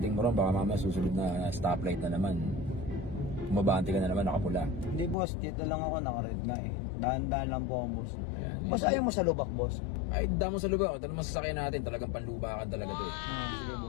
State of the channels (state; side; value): drops out; right; at 5.2 s